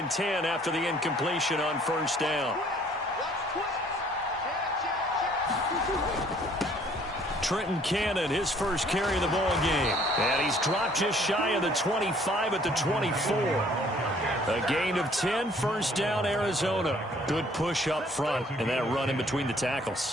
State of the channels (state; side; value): normal; both; correlation 0.59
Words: 10 after the incompletion on first down. Trenton Cannon, his first carry of the ball game. And he's dropped just shy of the 25 at the 24. A gain of 10, first down, Arizona. Good push up front, and that run in between the